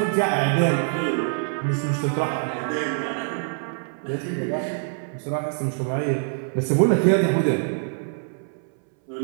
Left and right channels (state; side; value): silent; left; 62 dB below the other